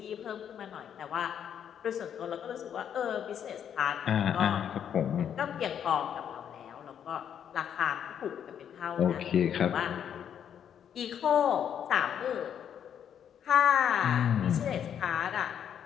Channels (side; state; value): right; quieter; 8.8 dB